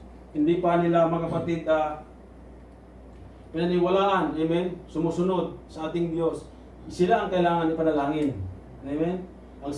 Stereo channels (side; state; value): both; identical; correlation 1.00